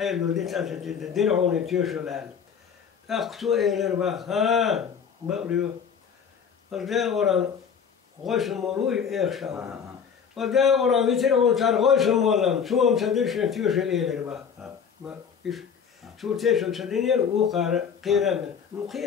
دي تاسة دينعوني تيوشل هال أقصو إيلر بقى ها بقريو وده ورا غوش المولوي إيخشا وده ورا بيترعون صار غوش المولم سوهم تدرشن تيوشل إيلر بقى إيش شو تيشل تدينير وقار قيران مو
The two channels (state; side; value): quieter; right; 7.0 dB